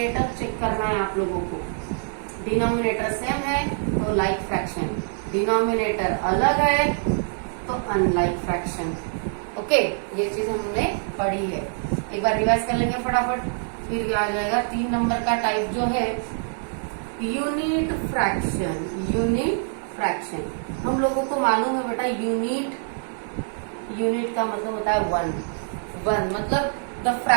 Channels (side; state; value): left; silent; digital silence